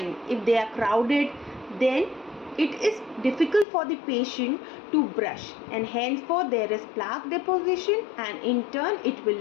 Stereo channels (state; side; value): drops out; right; at 3.7 s